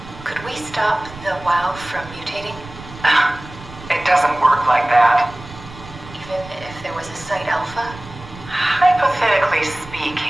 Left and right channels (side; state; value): right; noise; rumble, 16 dB below the sound